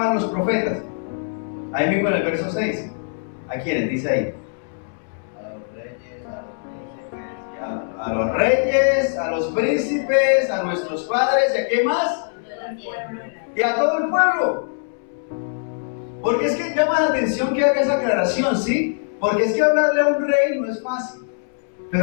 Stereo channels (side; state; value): right; silent; 64 dB below the other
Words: los profetas? Ahí mismo en el verso 6. ¿A quiénes? Dice ahí. A los reyes, a los príncipes, a nuestros padres, ¿y a qué más? Y a todo el pueblo. Porque es que llama la atención que haga esa aclaración, ¿sí? Porque es que hablarle a un rey no es fácil. Pero